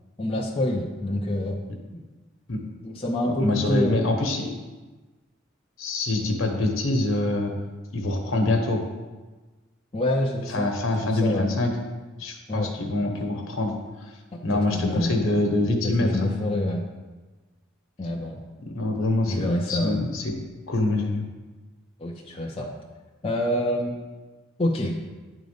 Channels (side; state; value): both; normal; correlation 0.63